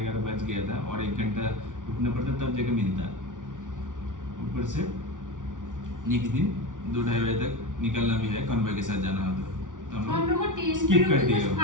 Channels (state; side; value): late; left; 0.88 ms